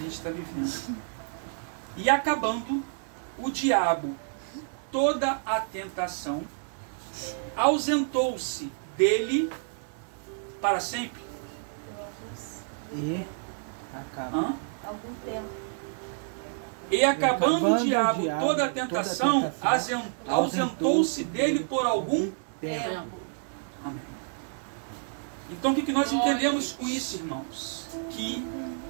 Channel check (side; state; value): left; silent; digital silence